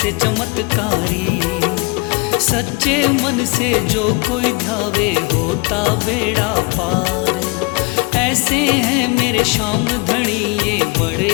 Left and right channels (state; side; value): quieter; right; 28.0 dB